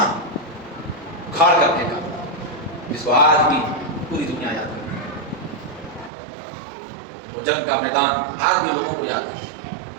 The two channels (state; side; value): drops out; left; at 6.1 s